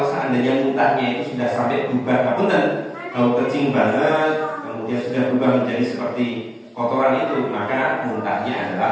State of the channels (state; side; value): identical; both; correlation 1.00